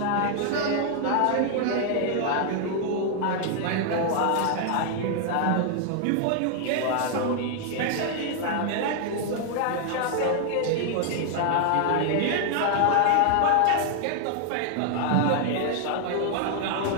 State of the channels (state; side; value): different; both; correlation 0.00